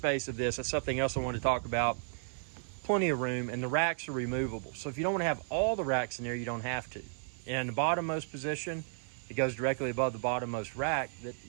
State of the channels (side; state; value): left; silent; 55 dB below the other